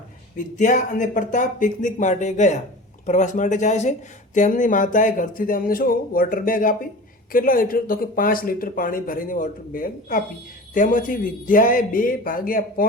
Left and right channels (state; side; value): normal; both; correlation 0.35